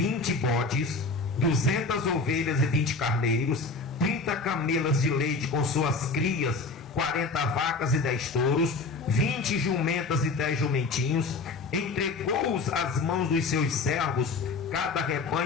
bodes, 200 ovelhas e 20 carneiros, 30 camelas de leite com suas crias, 40 vacas e 10 touros, 20 jumentas e 10 jumentinhos. Entregou-os às mãos dos seus servos, cada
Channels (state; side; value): quieter; right; 3.8 dB